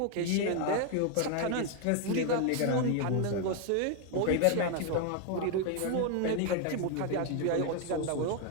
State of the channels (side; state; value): both; different; correlation 0.01